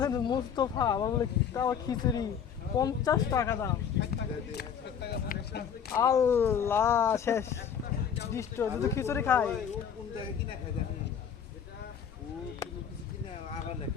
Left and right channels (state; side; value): quieter; right; 7.8 dB